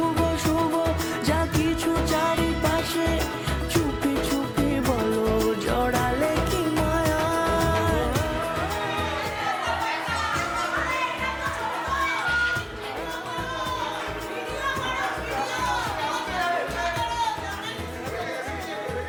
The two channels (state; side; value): identical; both; correlation 1.00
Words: শুভ যা কিছু চারিপাশে, চুপি চুপি বলো জড়ালে কি মায়া।